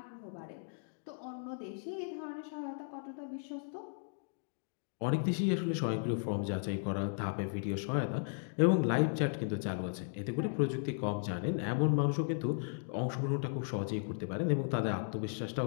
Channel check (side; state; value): right; silent; digital silence